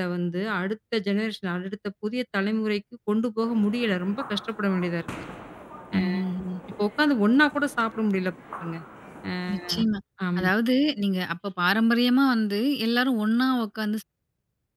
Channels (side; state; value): both; identical; correlation 1.00